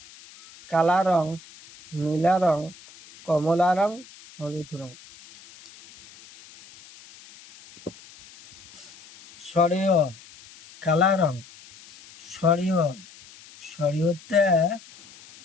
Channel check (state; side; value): noise; left; hiss, 22 dB below the sound